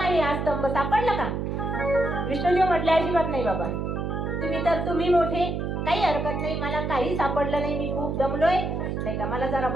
हा स्तंभ, सापडलं का. विष्णुदेव म्हटले अजिबात नाही बाबा, तुम्ही मोठे, काही हरकत नाही, मला काही सापडलं नाही, मी खूप दमलोय, नाही का, मला जरा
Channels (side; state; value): right; noise; hum, 2 dB below the sound